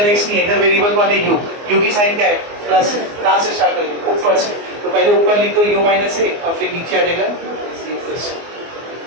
x नहीं है, इधर वेरिएबल कौन है u की साइन क्या है प्लस है. कहाँ से स्टार्ट करेंगे ऊपर से, तो पहले ऊपर लिख दो u माइनस a और फिर नीचे आ जाएगा c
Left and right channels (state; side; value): late; left; 24 ms